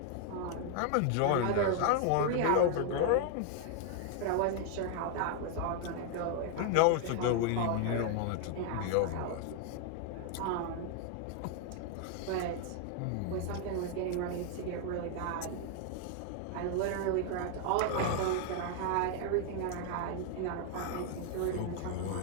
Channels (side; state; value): both; different; correlation 0.00